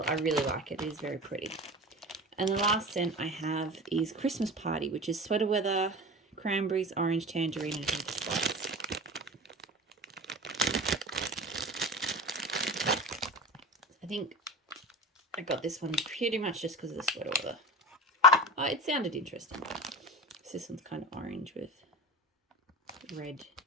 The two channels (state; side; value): normal; both; correlation 0.32